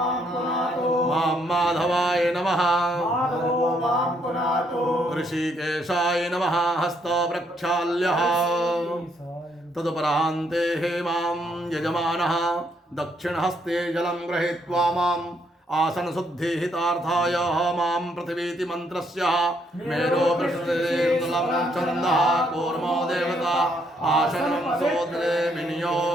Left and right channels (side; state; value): both; normal; correlation 0.72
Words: मां माधवाय नमः। ऋषिकेशाय नमः हस्तो प्रक्षाल्यः। तदुपरान्ते मां यजमानः दक्षिणहस्ते जलं गृहीत्वा माम् आसनशुद्धिहितार्थाय मां पृथिवीति मन्त्रस्य मेरो पृष्ठेन्दुलं छन्दः कूर्मो देवता आसनं सोदरे